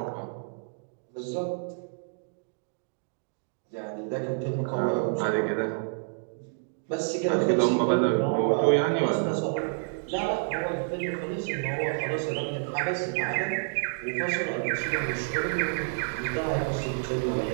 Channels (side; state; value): left; silent; digital silence